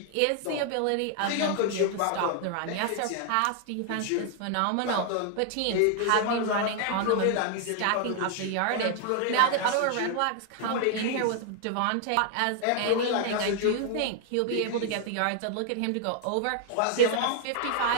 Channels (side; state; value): both; different; correlation 0.00